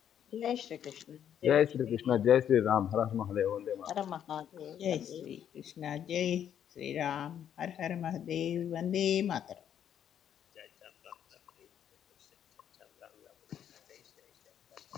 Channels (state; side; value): quieter; right; 9.5 dB